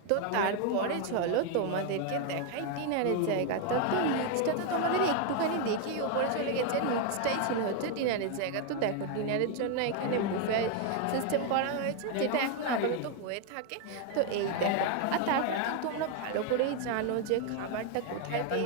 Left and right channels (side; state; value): both; different; correlation 0.01